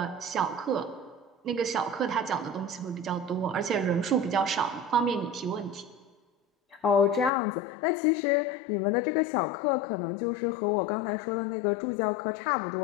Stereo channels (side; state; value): right; drops out; at 7.3 s